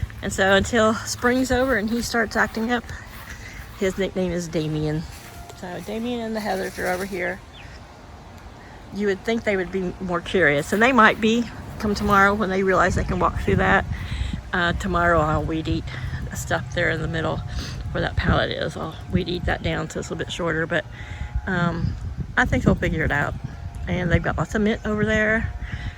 and so until spring's over and he starts acting up, his nickname is Damien. So Damien and the Heathers are over here. You would think they would be more curious, and they might be come tomorrow when they realize they can walk through that. Tomorrow I'll weed eat the stuff there in the middle where that pallet is. I'll weed eat that down so it's a little bit shorter, but I think they'll figure it out. And they've got lots of mint over there,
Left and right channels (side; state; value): both; identical; correlation 1.00